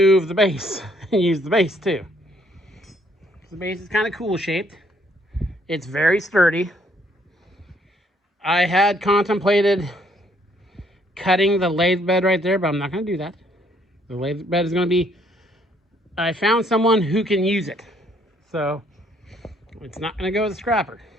the base and use the base too. The base is kind of cool shaped. It's very sturdy. I had contemplated cutting the lathe bed right there, but I'm not going to do that. The lathe bed is going to be, I found someone who can use it. So it's not going to go to the scrapper.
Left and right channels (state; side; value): normal; both; correlation 0.67